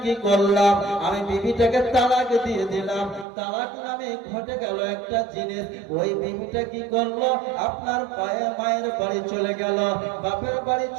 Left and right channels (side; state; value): left; drops out; at 3.2 s